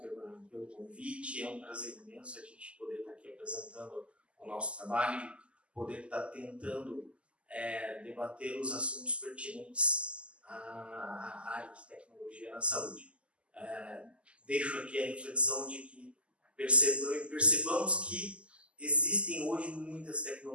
pelo convite. É um prazer imenso a gente poder estar aqui apresentando o nosso trabalho, poder estar tentando debater os assuntos pertinentes à área de tecnologia na saúde. Deixo aqui a reflexão de que percebamos que existem hoje muitas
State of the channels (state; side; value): late; left; 0.055 ms